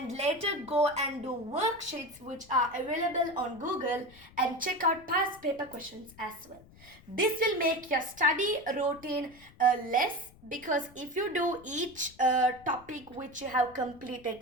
later go and do worksheets which are available on Google, and check out past paper questions as well. This will make your study routine less, because if you do each topic which you have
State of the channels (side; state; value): left; noise; rumble, 24 dB below the sound